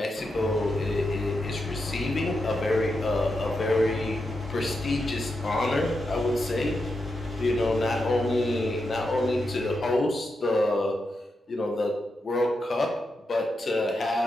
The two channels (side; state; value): both; normal; correlation 0.86